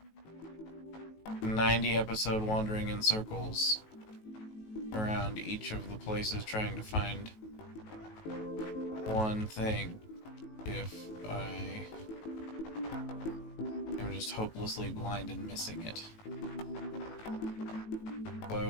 90 episode wandering in circles around each of the places trying to find one thing if I am just hopelessly blind and missing it. So I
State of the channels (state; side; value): late; right; 19 ms